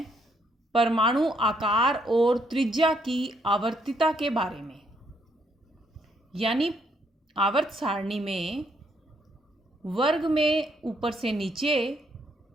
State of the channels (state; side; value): normal; both; correlation 0.72